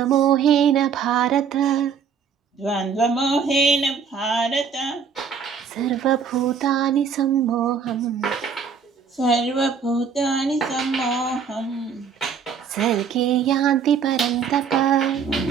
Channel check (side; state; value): left; quieter; 6.3 dB